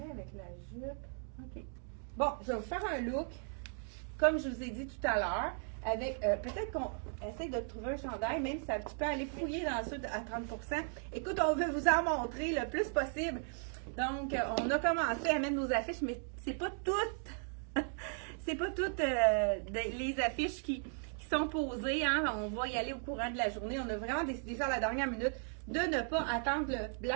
avec la jupe, ok. Bon, je vais vous faire un look, comme je vous ai dit tout à l'heure, avec, peut-être qu'on essaie de trouver un chandail, même si tu peux aller fouiller dans ça à 30%. Écoute, on veut vous en montrer le plus possible. Donc, on a commencé à mettre nos affiches, mais c'est pas toutes, c'est pas toutes les affiches qui sont posées, hein. On va y aller au courant de la journée. On a vraiment décidé ça à la dernière minute de ne pas attendre le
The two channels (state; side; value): silent; left; 53 dB below the other